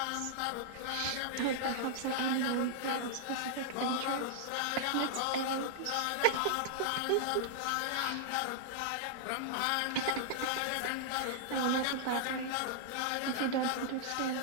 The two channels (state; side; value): different; both; correlation -0.01